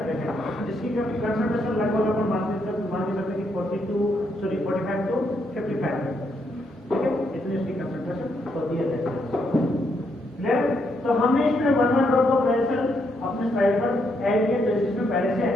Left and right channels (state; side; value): normal; both; correlation 0.77